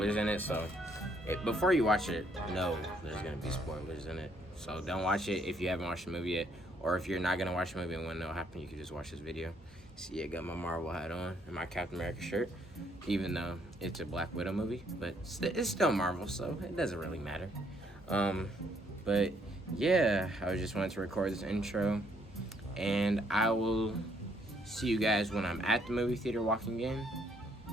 in it, so before you watch it, know there's going to be spoilers in it. So don't watch it if you haven't watched the movie yet, or if you're not going to watch the movie and want to know what happened, you can just watch this video. See, I got my Marvel hat on and my Captain America shirt, even though it's a Black Widow movie, but it's still Marvel, so it doesn't really matter. But yeah, I just wanted to record this intro, and I will see you guys when I'm at the movie theater walking in,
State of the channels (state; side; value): normal; both; correlation 0.69